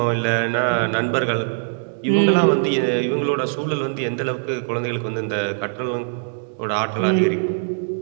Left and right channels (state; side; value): silent; left; digital silence